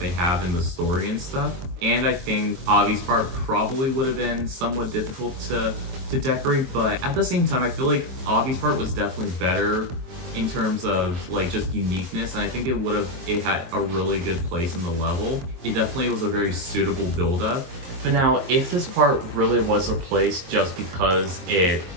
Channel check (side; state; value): left; late; 23 ms